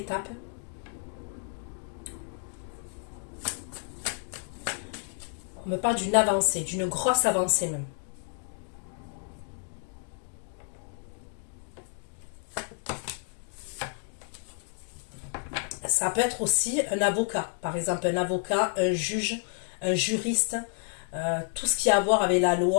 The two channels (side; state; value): right; silent; 58 dB below the other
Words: On me parle d'une avancée, d'une grosse avancée même. Ça peut être aussi un avocat, par exemple un avocat, un juge, un juriste, tout ce qui a à voir avec la